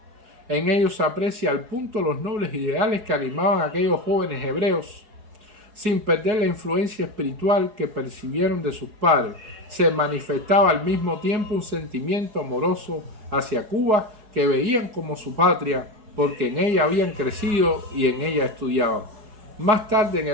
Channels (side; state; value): left; late; 4.7 ms